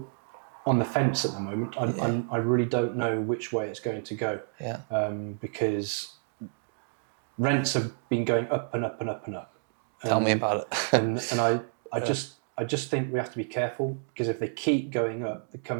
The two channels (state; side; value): silent; left; digital silence